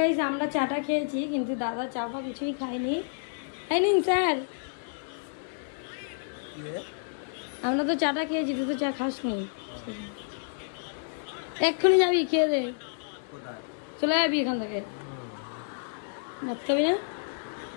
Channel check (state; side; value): silent; right; digital silence